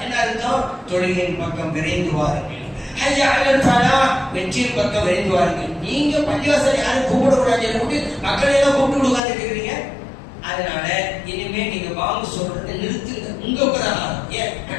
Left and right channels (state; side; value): drops out; right; at 9.2 s